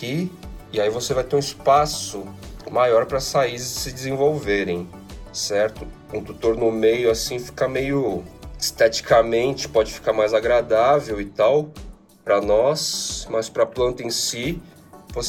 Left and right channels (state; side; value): identical; both; correlation 1.00